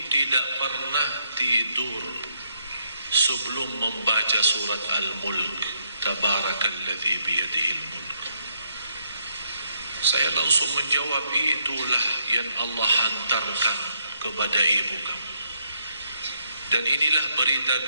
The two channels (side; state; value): both; inverted; correlation -0.73